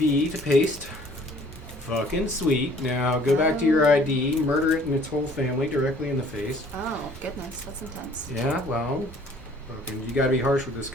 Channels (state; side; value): normal; both; correlation 0.55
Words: to paste. Fucking sweet. Now go back to your ID, murder it and its whole family directly in the face. Oh goodness, that's intense. Yeah, well, fucking, you gotta be harsh with this